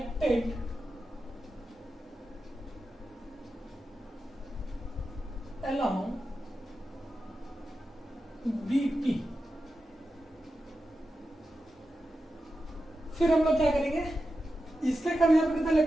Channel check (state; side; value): normal; both; correlation 0.90